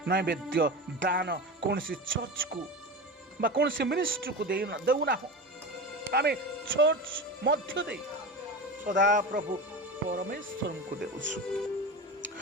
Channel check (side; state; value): both; normal; correlation 0.26